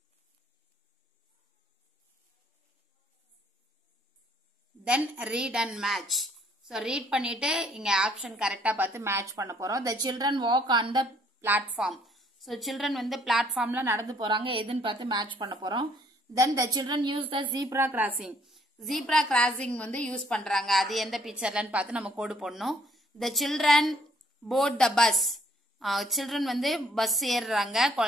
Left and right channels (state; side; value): normal; both; correlation 0.64